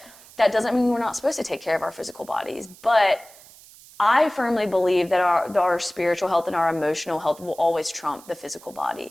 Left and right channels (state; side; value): noise; right; hiss, 22 dB below the sound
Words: that doesn't mean we're not supposed to take care of our physical bodies. But I firmly believe that our spiritual health and our emotional health will always trump the physical